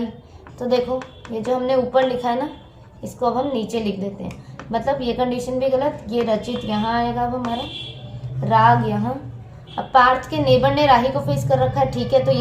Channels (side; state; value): both; identical; correlation 1.00